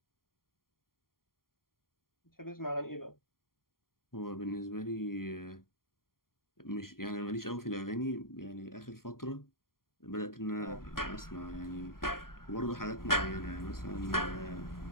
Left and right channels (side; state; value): right; late; 0.92 ms